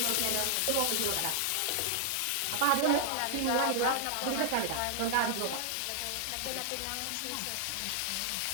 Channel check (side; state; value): both; different; correlation -0.01